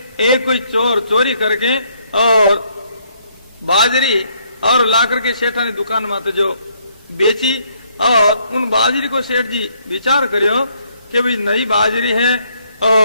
एक कोई चोर चोरी करके और बाजरी और ला करके सेठा ने दुकान में जो बेची, और उन बाजरी को सेठ जी विचार करियो कि भाई नई बाजरी है,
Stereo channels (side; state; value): both; inverted; correlation -0.69